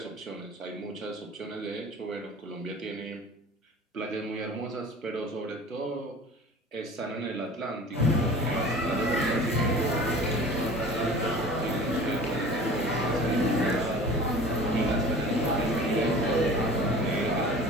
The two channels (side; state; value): both; normal; correlation 0.41